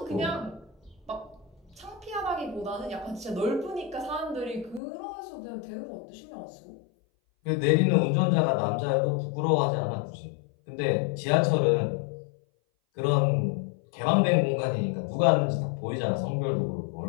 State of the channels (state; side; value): drops out; right; at 4.8 s